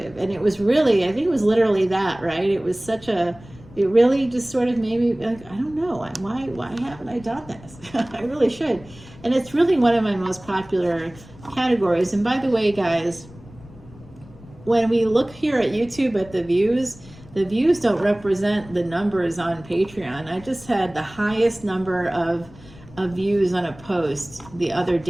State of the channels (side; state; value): left; noise; rumble, 21 dB below the sound